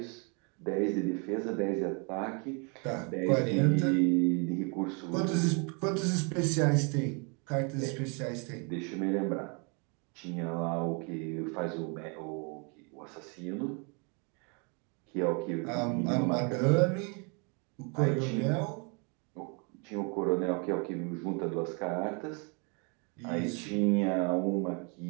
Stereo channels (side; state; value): left; quieter; 34.6 dB